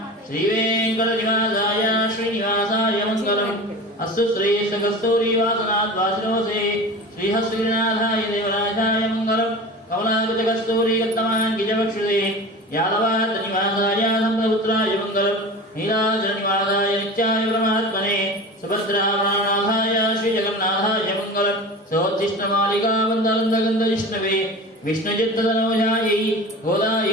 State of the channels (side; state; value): both; normal; correlation 0.33